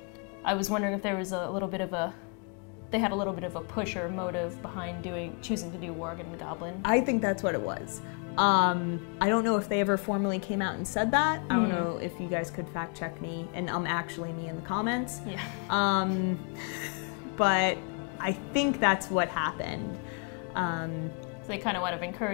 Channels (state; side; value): quieter; right; 38.2 dB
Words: I was wondering if there was they had a little bit of a push or motive behind choosing to do Worgen and Goblin. I think that's what it was. I don't know if they ever formally came out and said that. I don't know if you guys could fact check me, and actually me in the comments. Yeah. But I think that's what happened. So they kind of want to